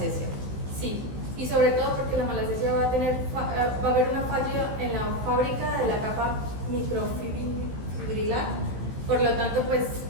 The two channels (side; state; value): left; late; 15 ms